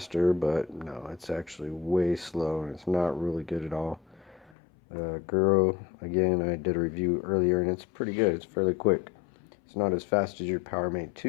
but no, it's actually way slow and it's not really good at all. Gerui, again, I did a review earlier and it's pretty good. It's fairly quick. It's not as fast as your Power-Mate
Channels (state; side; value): drops out; right; at 4.5 s